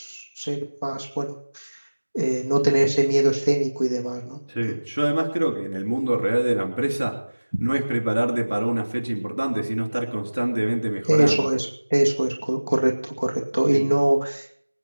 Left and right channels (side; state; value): both; inverted; correlation -1.00